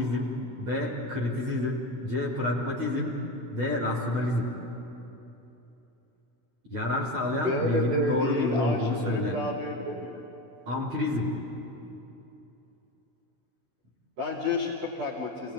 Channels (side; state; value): left; late; 16 ms